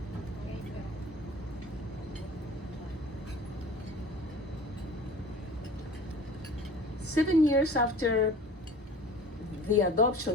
7 years after the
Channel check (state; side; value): normal; both; correlation 0.43